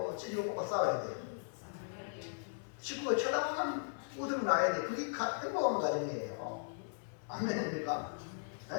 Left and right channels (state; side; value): silent; right; 53 dB below the other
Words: 찌개고 볶아 싸워야 돼요. 식구가 쳐다보면 웃음이 나야 돼. 그게 행복한 가정이에요. 아멘입니까?